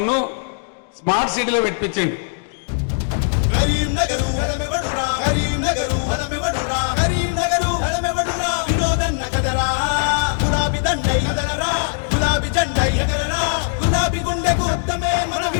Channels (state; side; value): silent; right; digital silence